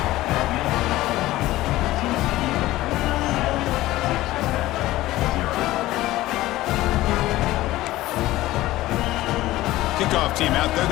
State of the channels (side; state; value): right; quieter; 16.7 dB